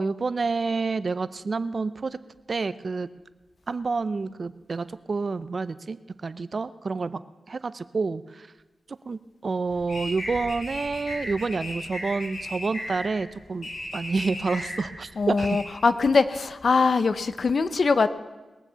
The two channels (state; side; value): normal; both; correlation 0.89